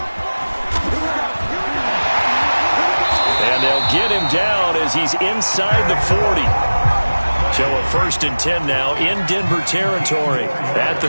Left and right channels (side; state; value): both; inverted; correlation -1.00